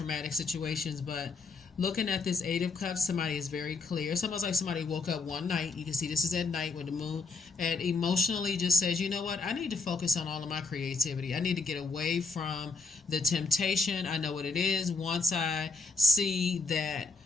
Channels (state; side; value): quieter; right; 4.1 dB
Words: situations, but looking at this Eight of Cups, somebody is very clear. It's almost like somebody woke up one night. You can see this is at night with the moon, and emotionally just says, you know what? I need to focus on all of my creativity. I need to get away from the temptation. I know what it is. Once I see that